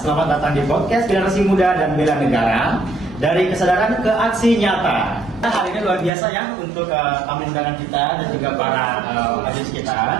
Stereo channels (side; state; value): left; drops out; at 6.1 s